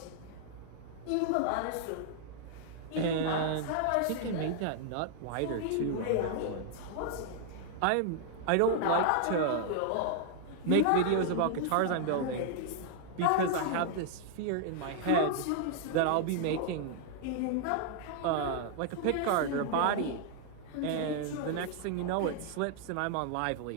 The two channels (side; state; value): both; different; correlation -0.01